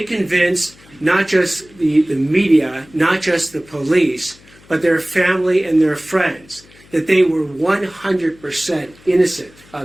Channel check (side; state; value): left; noise; hum, 26 dB below the sound